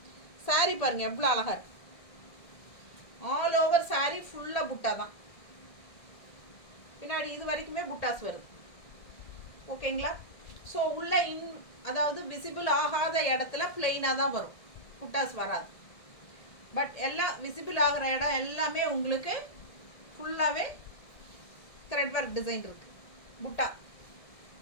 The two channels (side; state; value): right; late; 1.6 ms